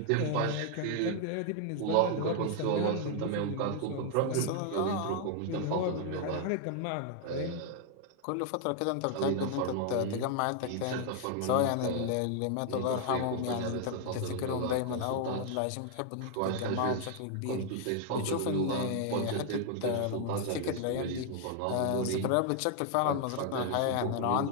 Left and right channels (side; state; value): both; different; correlation 0.00